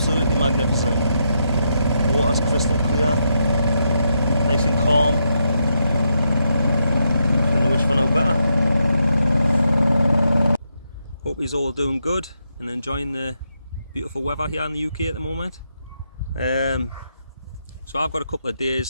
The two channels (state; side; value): inverted; both; correlation -0.81